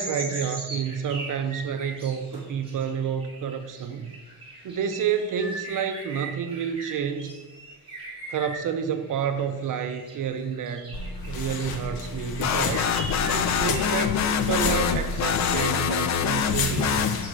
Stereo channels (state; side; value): normal; both; correlation 0.11